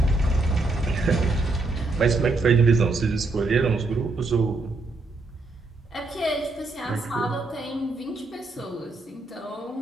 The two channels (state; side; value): quieter; left; 3.3 dB